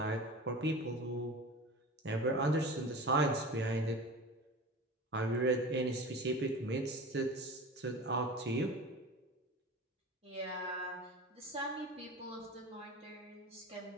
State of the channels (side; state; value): both; normal; correlation 0.34